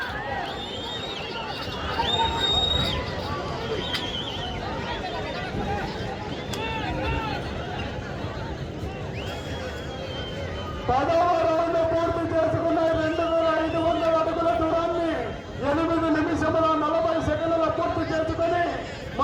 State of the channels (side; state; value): both; identical; correlation 1.00